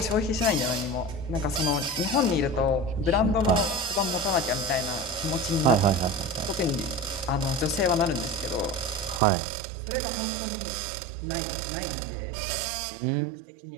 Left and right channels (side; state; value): left; drops out; at 9.2 s